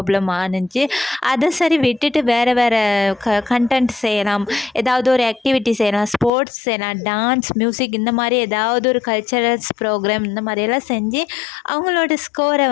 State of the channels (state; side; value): drops out; right; at 6.3 s